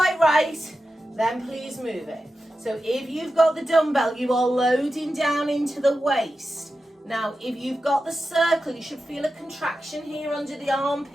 right, then please move it. So if you've got the dumbbell, you are loading down into the waist. Now, if you've got the circle, you should feel a contraction here under the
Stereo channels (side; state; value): both; normal; correlation 0.91